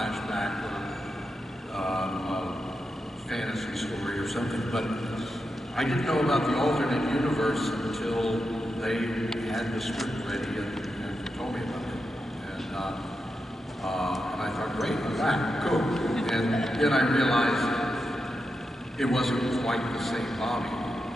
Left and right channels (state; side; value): normal; both; correlation 0.87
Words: or fantasy story or something, but I didn't know about the alternate universe until they had the script ready and told me about it. And I thought, great, I'm back, cool. And then I realized it wasn't quite the same Bobby,